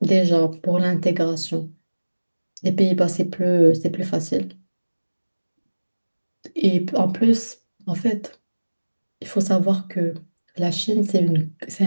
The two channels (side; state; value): both; inverted; correlation -1.00